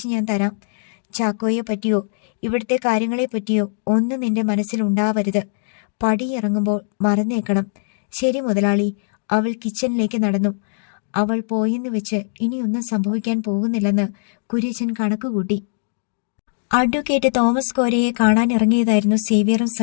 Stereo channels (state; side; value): silent; right; digital silence